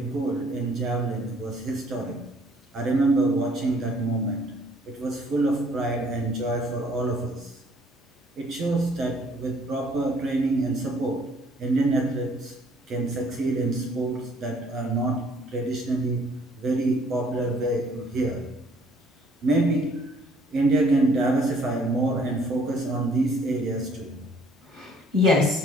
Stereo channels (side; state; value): both; normal; correlation 0.60